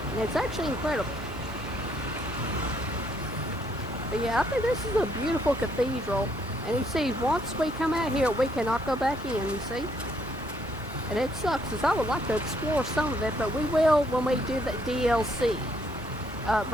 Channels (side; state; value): both; normal; correlation 0.70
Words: And it's actually incredible. But yeah, I think this is a beautiful cathedral. And you see, once we come out here, we cannot go back in, you see? And it sucks, because I would like to explore some of it, but we will when we do the DLC.